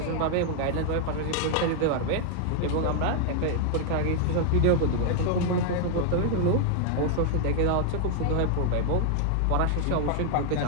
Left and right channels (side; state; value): both; different; correlation 0.00